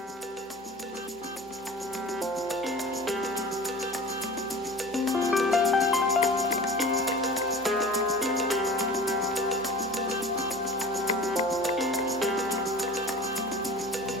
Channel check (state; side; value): normal; both; correlation 0.38